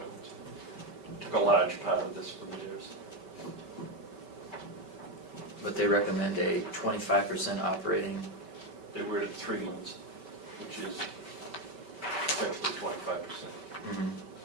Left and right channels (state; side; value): late; left; 5.2 ms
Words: Took a large part of this from theirs. But they recommend a 25% operating. They were at 3 months, which is essentially 25%. Mhm.